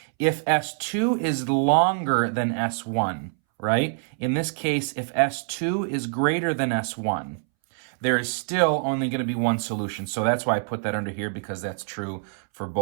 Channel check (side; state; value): left; silent; 62 dB below the other